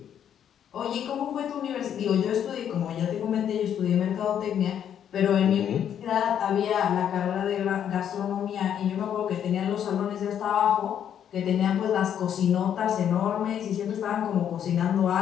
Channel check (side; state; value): right; quieter; 9.3 dB